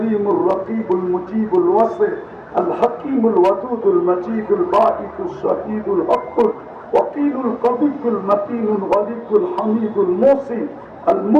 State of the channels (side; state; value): both; identical; correlation 1.00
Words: রকিবুল মুজিবুল ওয়াসি الحكيم الودود المجيد الباعث الشهيد الحق الوكيل القوي المتين الغليظ الحميد الموصي